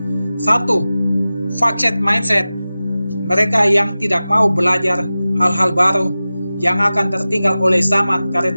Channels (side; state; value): both; inverted; correlation -0.96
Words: Satu, fixed mindset. Mereka yang tidak mau belajar hal-hal baru yang akan tertinggal oleh zaman